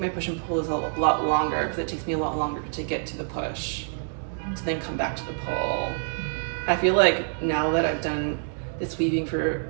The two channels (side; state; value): left; silent; digital silence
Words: my push and pull is a lot longer because it takes me a lot longer to get to the push, to then come back to the pull. I feel like now that I've done this weaving for